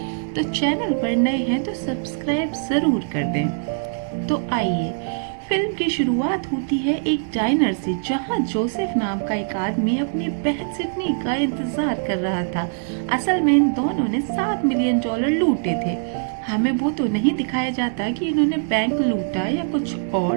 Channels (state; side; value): silent; left; 64 dB below the other